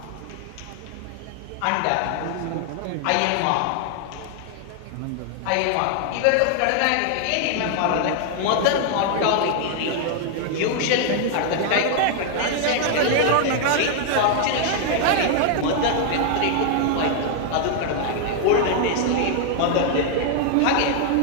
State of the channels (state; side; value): different; both; correlation 0.00